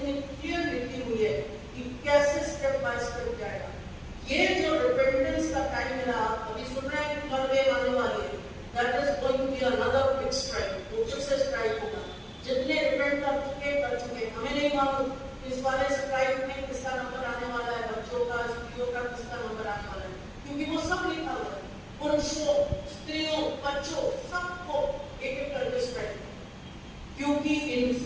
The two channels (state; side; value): identical; both; correlation 1.00